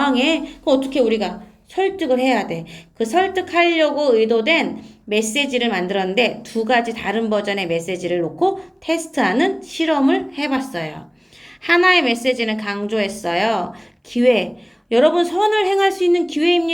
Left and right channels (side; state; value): both; identical; correlation 1.00